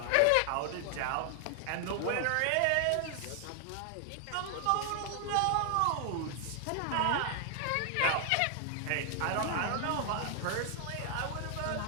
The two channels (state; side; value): different; both; correlation 0.00